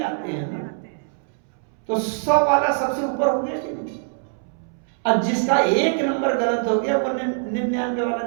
आते हैं ना, तो 100 वाला सबसे ऊपर हो गया कि नहीं। अब जिसका 1 नंबर गलत हो गया वो 99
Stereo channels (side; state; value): left; silent; 63 dB below the other